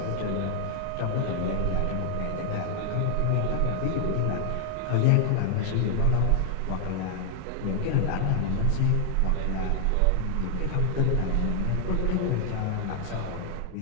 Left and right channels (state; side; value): different; both; correlation 0.00